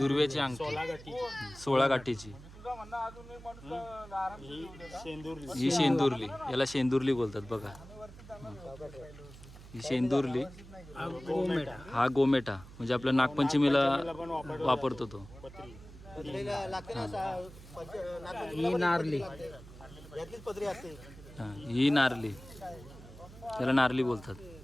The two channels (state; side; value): noise; right; hum, 17 dB below the sound